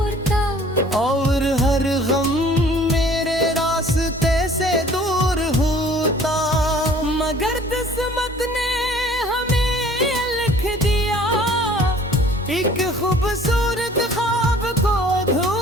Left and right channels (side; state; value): both; normal; correlation 0.52